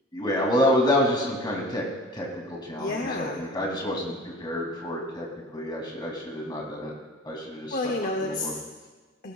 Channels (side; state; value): both; normal; correlation 0.41